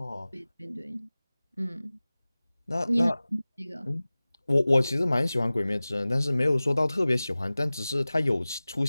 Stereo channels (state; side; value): inverted; both; correlation -0.98